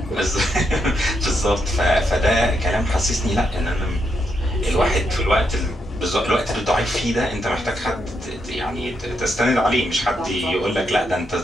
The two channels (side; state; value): both; normal; correlation 0.80